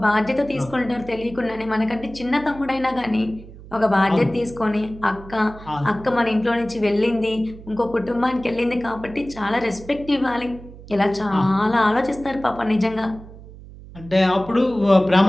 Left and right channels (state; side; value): noise; right; hum, 17 dB below the sound